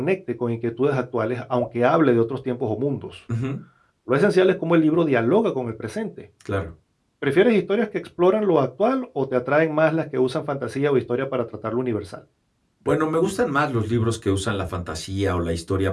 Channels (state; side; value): identical; both; correlation 1.00